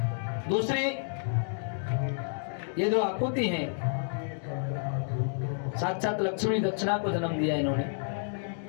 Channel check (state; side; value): silent; right; digital silence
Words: दूसरी, ये जो आकुति हैं, साक्षात लक्ष्मी दक्षिणा को जन्म दिया इन्होंने।